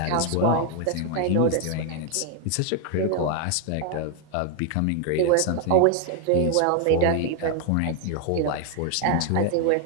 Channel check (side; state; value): both; different; correlation 0.00